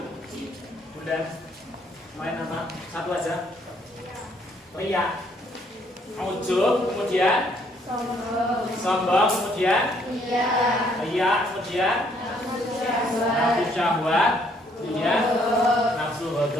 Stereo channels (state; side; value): normal; both; correlation 0.67